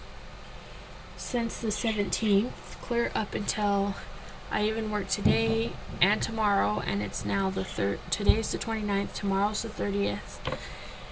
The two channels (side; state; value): both; identical; correlation 1.00